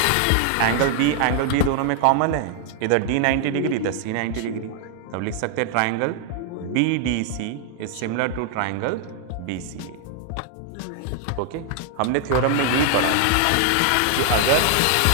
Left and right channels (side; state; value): both; different; correlation 0.00